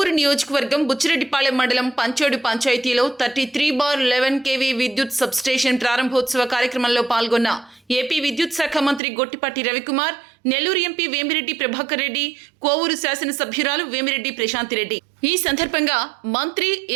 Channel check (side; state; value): left; drops out; at 9.0 s